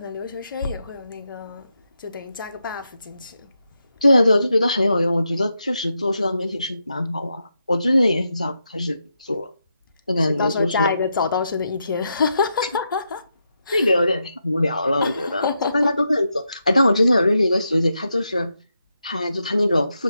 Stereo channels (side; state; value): both; inverted; correlation -0.84